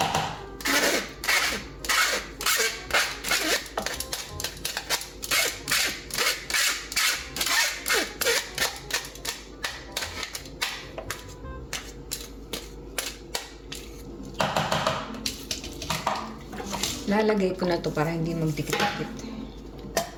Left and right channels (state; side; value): identical; both; correlation 1.00